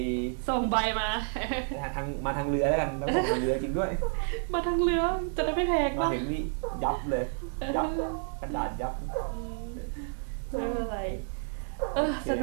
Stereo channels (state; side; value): silent; left; 55 dB below the other